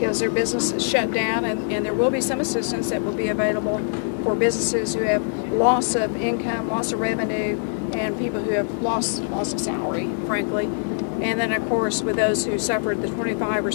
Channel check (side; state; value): right; silent; digital silence